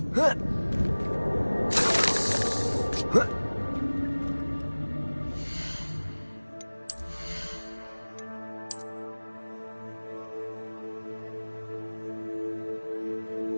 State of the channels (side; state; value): both; inverted; correlation -1.00